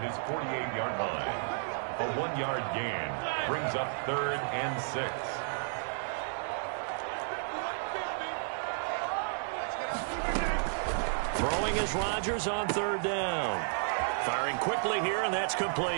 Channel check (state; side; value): silent; left; digital silence